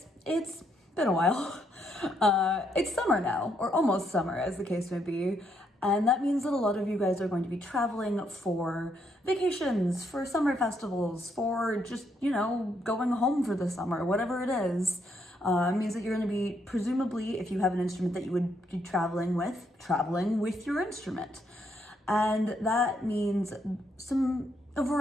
it's been a while. It's summer now, or almost summer as the case may be, and that means that a lot of you guys are going to be traveling for vacations, for summer festivals, for just, going home for the summer, whatever it is. It means that you're going to be, presumably, if you have an instrument that you would be traveling with your instrument. And that means a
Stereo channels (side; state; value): both; normal; correlation 0.75